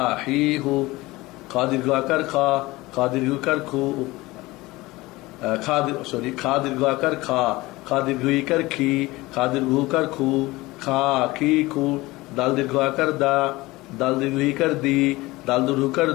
হি, হু, খা দীর্ঘ আকার খা, খা দীর্ঘকার খু, খা দীর্ঘ আকার খা, খা দীর্ঘ ইকার খি, খা দীর্ঘকার খু, খা, খি, খু, দাল দীর্ঘ আকার দা, দাল দীর্ঘ ইকার দি, দাল দীর্ঘকার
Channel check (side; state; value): right; quieter; 20.4 dB